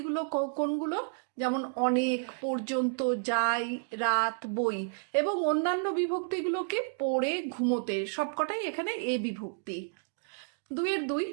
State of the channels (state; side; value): silent; left; digital silence